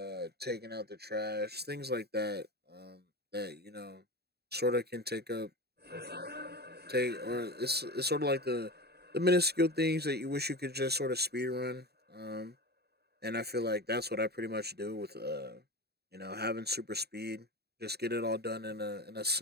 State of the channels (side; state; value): left; late; 0.47 ms